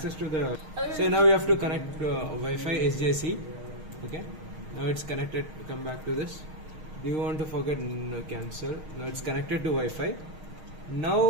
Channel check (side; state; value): left; late; 6.4 ms